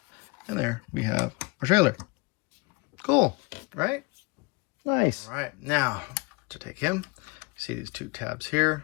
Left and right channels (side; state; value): right; quieter; 26.2 dB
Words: And there we have our trailer. Cool, right? Nice. All right, now to take him, see these two tabs